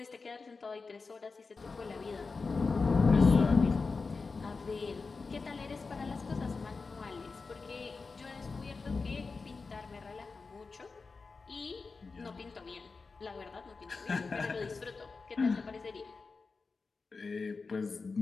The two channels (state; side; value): quieter; right; 4.3 dB